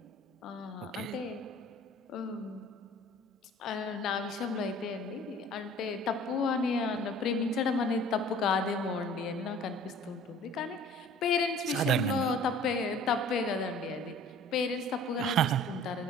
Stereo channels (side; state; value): both; normal; correlation 0.48